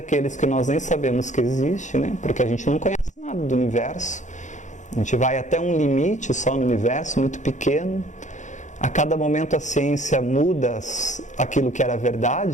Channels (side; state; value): right; late; 0.35 ms